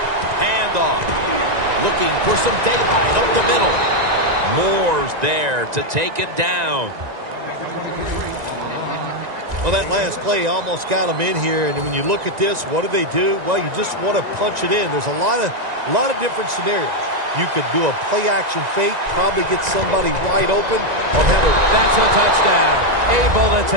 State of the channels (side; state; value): left; late; 1.9 ms